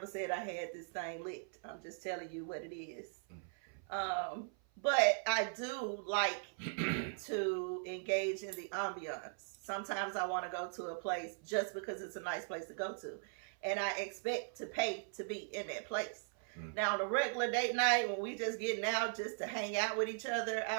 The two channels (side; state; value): left; silent; 52 dB below the other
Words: said I had this thing licked. I'm just telling you what it is. Mm-hmm. But I do like to engage in the ambiance. Sometimes I want to go to a place just because it's a nice place to go to. And I expect to pay to be in that place. Mm. Now, on a regular date night, when we just getting out just to hang out with each other, I